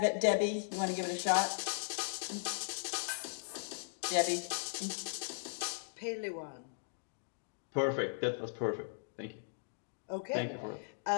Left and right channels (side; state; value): right; silent; digital silence